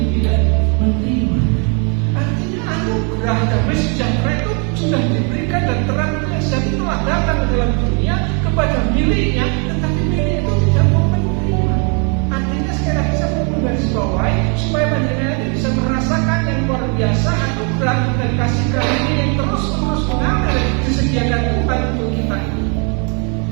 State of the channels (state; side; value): quieter; left; 36.8 dB